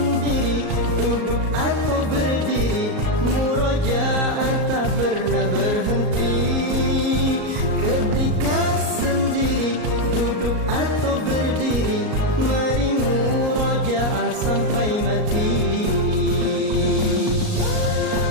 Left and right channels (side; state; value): left; late; 38 ms